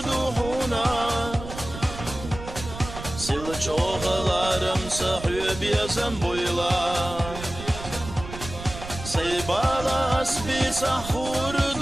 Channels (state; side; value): noise; right; rumble, 11 dB below the sound